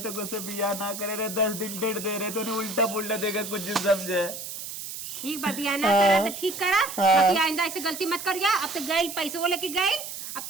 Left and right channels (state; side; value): noise; right; hiss, 8 dB below the sound